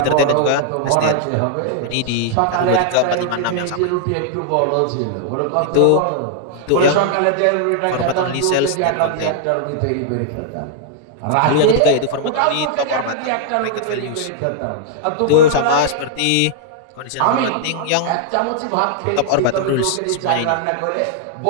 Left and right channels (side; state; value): both; different; correlation -0.01